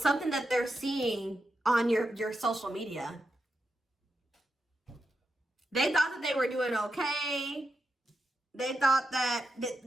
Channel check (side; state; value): both; normal; correlation 0.87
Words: something that they're seeing on your social media. They thought that they were doing okay. They thought that,